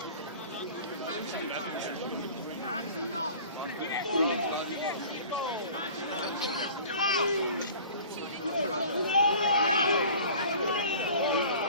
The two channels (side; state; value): both; inverted; correlation -0.45